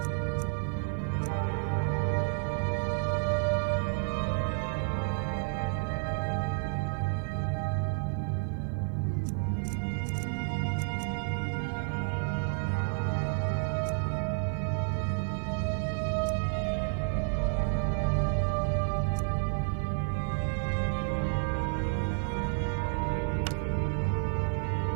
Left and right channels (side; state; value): left; silent; 57 dB below the other